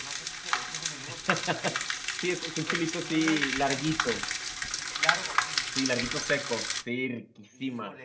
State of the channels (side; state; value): both; identical; correlation 1.00